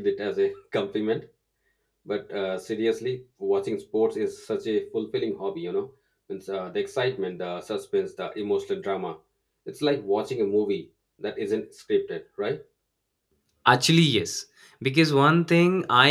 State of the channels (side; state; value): both; identical; correlation 1.00